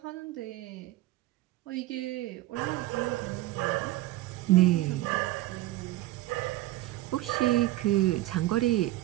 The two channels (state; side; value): quieter; left; 16.7 dB